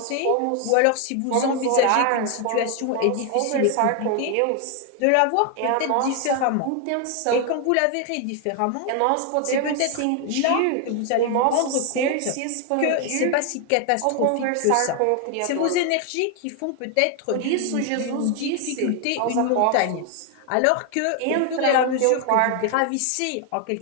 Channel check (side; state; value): both; different; correlation 0.00